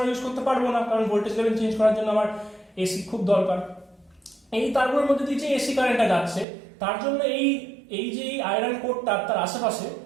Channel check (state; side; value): drops out; left; at 6.5 s